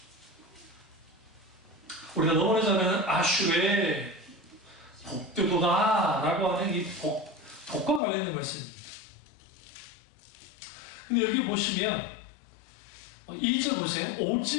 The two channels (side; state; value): right; drops out; at 8.0 s